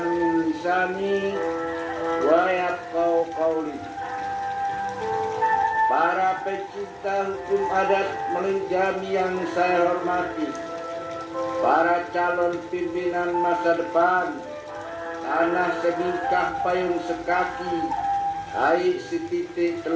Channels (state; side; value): identical; both; correlation 1.00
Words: min lisani wa yafqahu qawli. Para pecinta hukum adat Melinjami yang saya hormati, para calon pimpinan masa depan, tanah sebingkah payung sekaki, air setitik